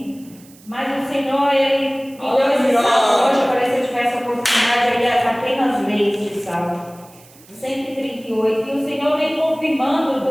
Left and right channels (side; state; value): right; noise; hiss, 25 dB below the sound